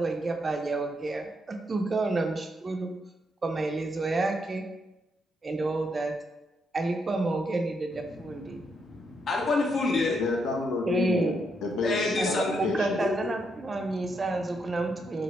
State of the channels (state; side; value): normal; both; correlation 0.78